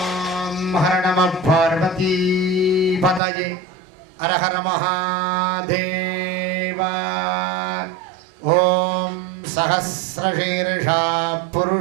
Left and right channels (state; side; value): drops out; left; at 3.2 s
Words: ஹர நம பார்வதி பதயே ஹர ஹர மகாதேவா. ஓம் சஹஸ்ரசீர்ஷா